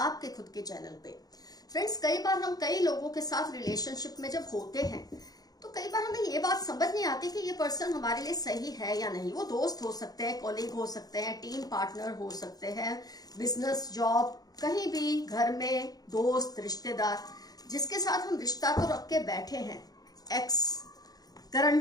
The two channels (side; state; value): right; late; 0.18 ms